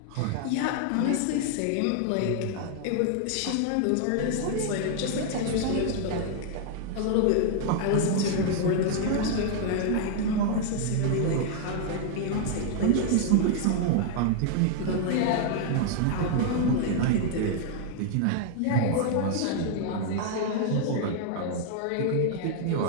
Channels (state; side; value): different; both; correlation 0.00